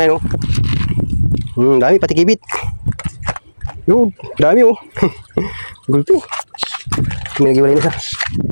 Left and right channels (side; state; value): both; inverted; correlation -1.00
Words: oh. Dami pati kibit. Yung dami oh. Gulpi. May nagiwalay na siya.